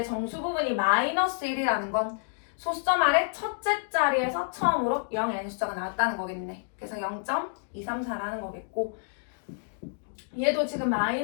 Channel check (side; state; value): right; silent; digital silence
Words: 정수 부분이 마이너스 1이라는 건 소수점 아래 첫째 자리에서 처음으로 0이 아닌 숫자가 나왔다는 거겠네. 그래서 0.234라는 거겠고, 얘도 지금